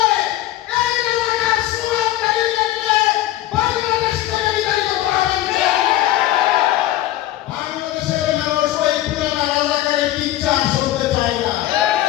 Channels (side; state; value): right; quieter; 14.5 dB